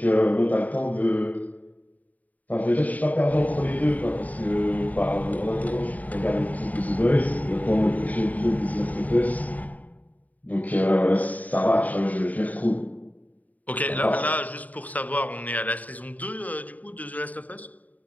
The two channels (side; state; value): right; late; 0.075 ms